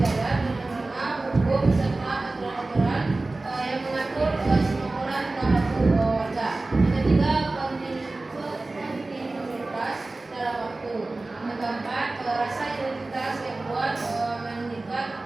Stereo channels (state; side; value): quieter; left; 3.1 dB